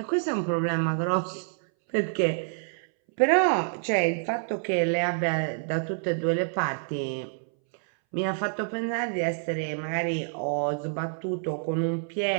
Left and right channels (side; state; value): left; silent; 60 dB below the other